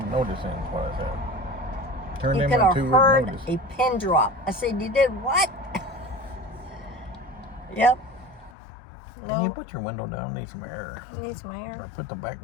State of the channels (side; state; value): right; drops out; at 8.5 s